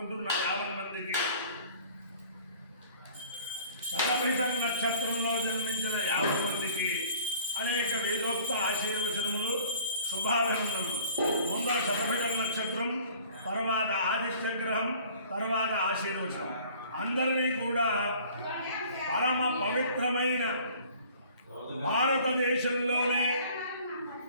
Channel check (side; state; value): both; inverted; correlation -0.50